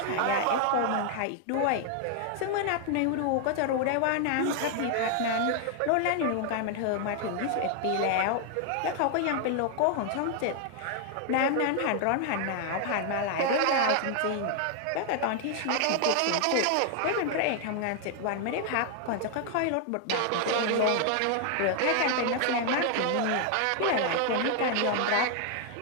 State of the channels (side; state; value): both; different; correlation 0.00